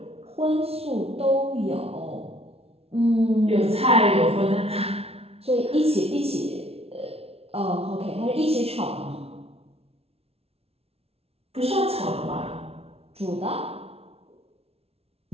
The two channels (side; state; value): left; late; 0.30 ms